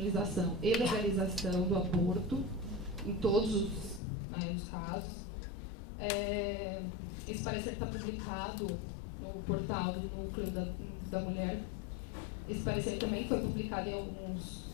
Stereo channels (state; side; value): drops out; right; at 4.0 s